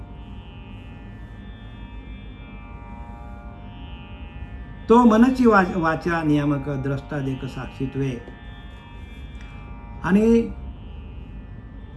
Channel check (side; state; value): both; identical; correlation 1.00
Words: तो मनची वाचा नियामक द्रष्टा देक साक्षीत्वे. आणि